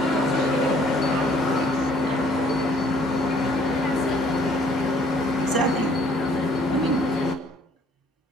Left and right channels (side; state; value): both; normal; correlation 0.60